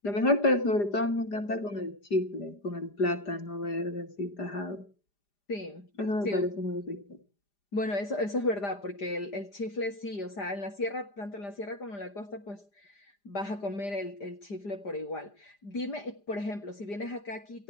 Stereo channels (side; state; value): right; late; 5.0 ms